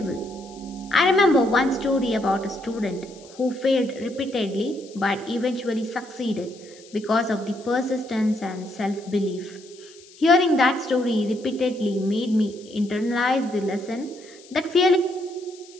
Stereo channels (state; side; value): noise; left; hiss, 23 dB below the sound